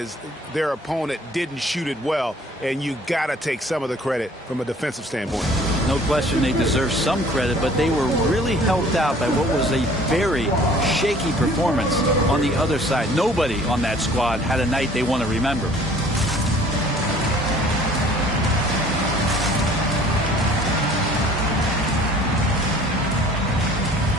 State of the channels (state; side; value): normal; both; correlation 0.53